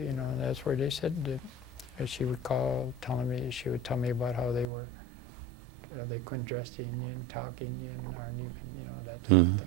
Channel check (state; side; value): drops out; left; at 4.7 s